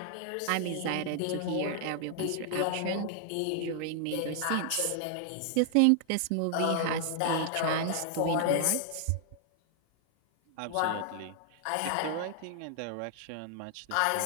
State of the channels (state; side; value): different; both; correlation 0.00